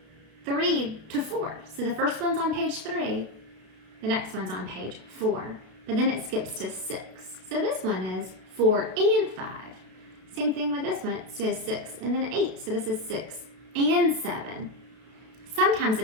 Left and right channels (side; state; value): left; late; 32 ms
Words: 3 to 4. So the first one's on page 3, the next one's on page 4, but then it skips to 6. So this one is 4 and 5. Same thing with this one, it says 6 and then 8. So this is 6 and 7. Sometimes